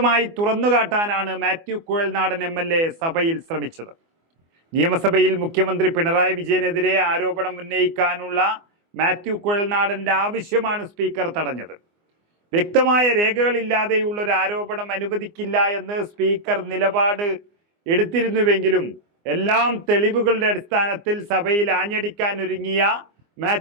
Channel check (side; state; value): left; late; 24 ms